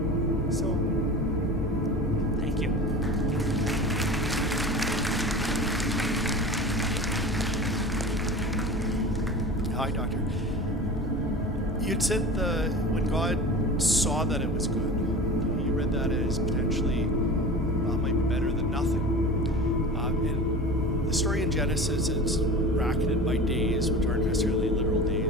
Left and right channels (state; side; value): normal; both; correlation 0.34